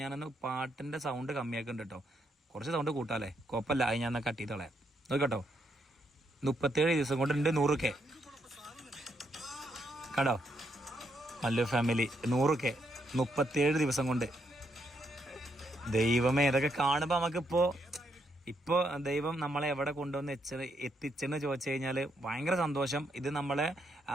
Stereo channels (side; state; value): both; normal; correlation 0.77